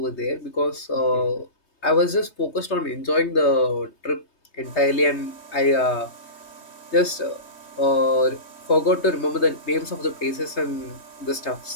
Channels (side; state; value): right; late; 3.2 ms